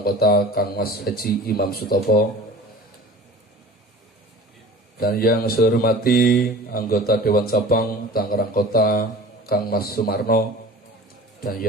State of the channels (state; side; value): normal; both; correlation 0.41